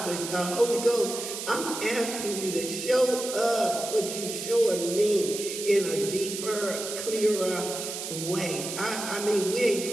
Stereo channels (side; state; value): right; noise; hiss, 6 dB below the sound